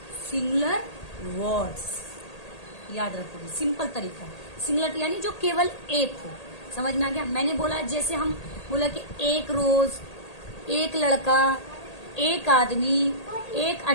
सिंगुलर वर्ड्स याद रखोगे, सिंपल तरीका। सिंगुलर यानी जो केवल एक हो। समझ में आ गया? मैंने बोला, जैसे हम बोला कि एक रोज, एक लड़का, एक आदमी, एक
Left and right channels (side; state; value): right; late; 1.8 ms